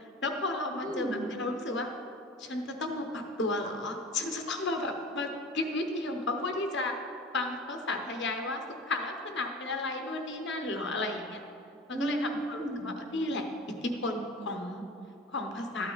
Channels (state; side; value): normal; both; correlation 0.38